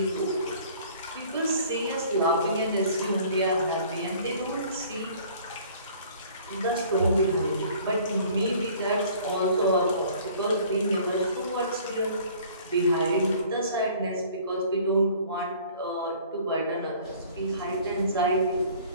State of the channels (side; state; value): both; inverted; correlation -0.52